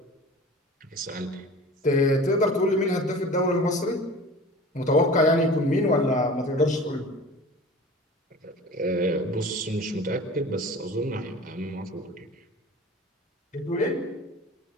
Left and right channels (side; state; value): both; normal; correlation 0.40